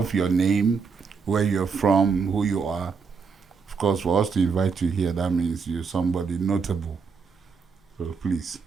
your name, where you're from, who you are? Of course, for us to invite you here, that means you're somebody notable. So please.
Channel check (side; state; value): left; quieter; 5.4 dB